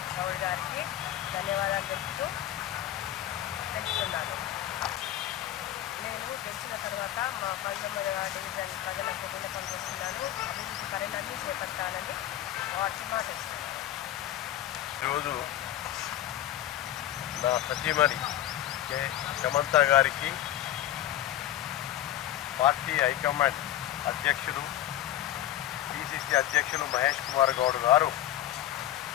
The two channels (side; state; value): right; quieter; 13.1 dB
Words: గౌడ్ గారికి ధన్యవాదాలు తెలుపుతున్నాను. నేను గెలిచిన తర్వాత మా బండమల డివిజన్ ప్రజలకు విన్నపం చేస్తున్నాను. అభివృద్ధి పనులన్నీ చేపట్టాలని వాటి మాటిస్తున్నాను. ఈరోజు నా సతీమణి సమంత గారికి పార్టీ హైకమాండ్ అధ్యక్షులు పిసిసి అధ్యక్షులు మహేష్ కుమార్ గౌడ్ గారు